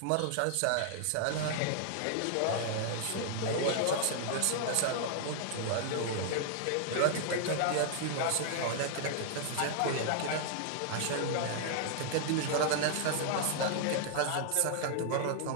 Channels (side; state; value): both; different; correlation -0.01